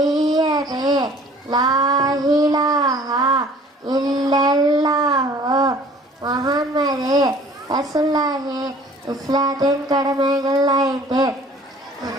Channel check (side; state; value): both; normal; correlation 0.51